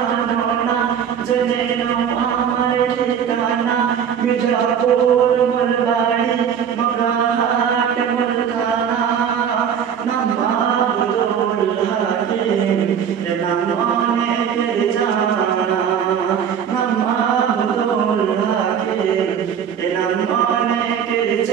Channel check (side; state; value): left; quieter; 8.1 dB